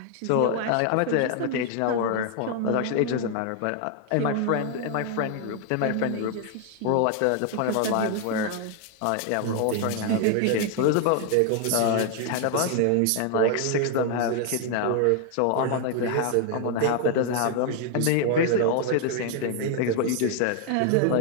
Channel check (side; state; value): both; different; correlation 0.00